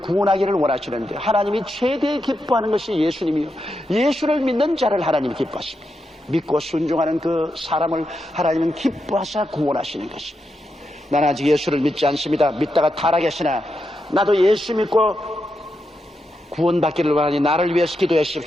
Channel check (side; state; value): both; normal; correlation 0.85